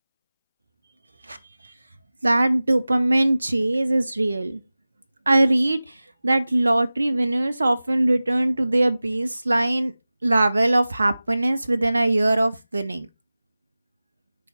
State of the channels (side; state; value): both; inverted; correlation -0.97